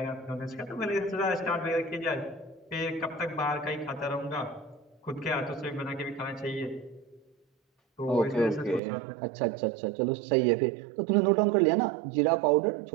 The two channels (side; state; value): left; drops out; at 8.8 s